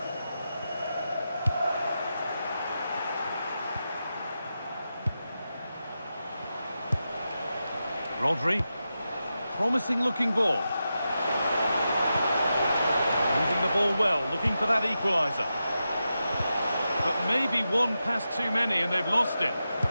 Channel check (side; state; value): both; inverted; correlation -0.90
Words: Rodri. Promising looking ball. Moving the ball well, looking for that equaliser. But maybe one pass too many and they've lost it.